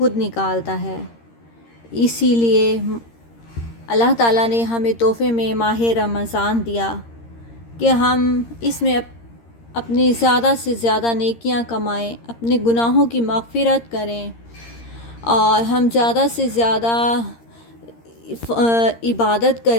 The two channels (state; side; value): late; right; 13 ms